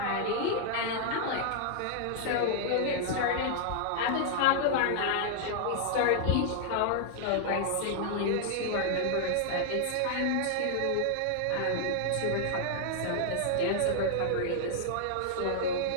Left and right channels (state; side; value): different; both; correlation 0.00